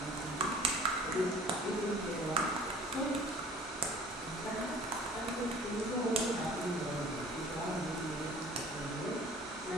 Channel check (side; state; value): both; normal; correlation 0.49